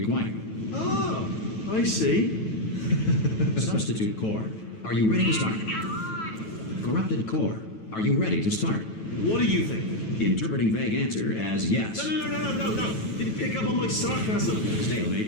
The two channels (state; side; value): late; right; 9.2 ms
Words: Oh, I see. Substitute core. Are you ready to start? Corrupted core. Are you ready to start? What do you think? Interpreting vague answer as yes. No. Didn't pick up on my sarcasm.